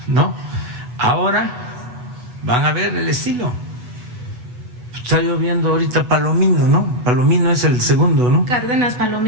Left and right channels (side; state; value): left; late; 8.0 ms